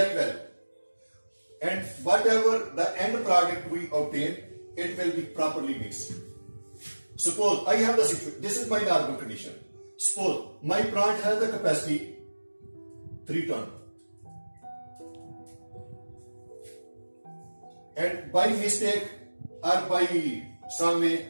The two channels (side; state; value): both; inverted; correlation -1.00